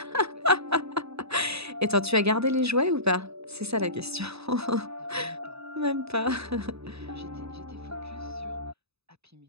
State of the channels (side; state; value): left; late; 0.79 ms